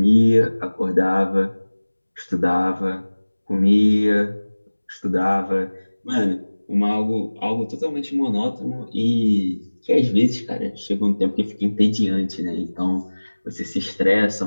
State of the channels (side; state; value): both; inverted; correlation -1.00